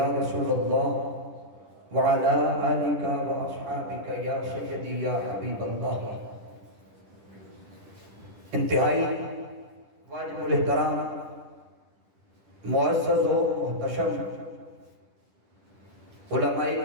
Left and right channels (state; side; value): late; left; 10 ms